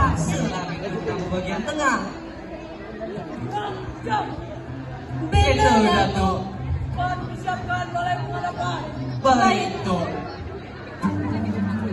lah beta datang ke bagian tengah. Beta Datuk. Baik, Tok.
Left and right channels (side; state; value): both; identical; correlation 1.00